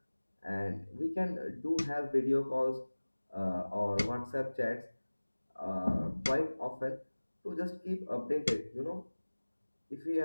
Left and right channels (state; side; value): inverted; both; correlation -1.00